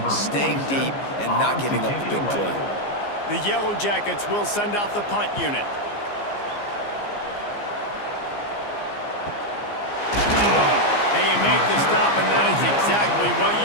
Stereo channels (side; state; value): right; late; 15 ms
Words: staying deep, and not giving up the big play. The Yellow Jackets will send out the punt unit. And you make the stop, and that is exactly what